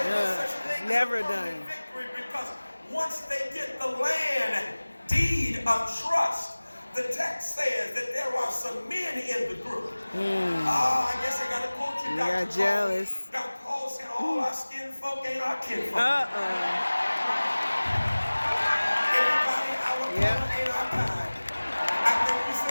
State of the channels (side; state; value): both; inverted; correlation -1.00